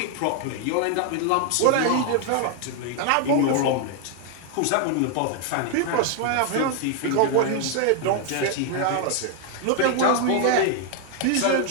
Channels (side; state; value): both; different; correlation 0.00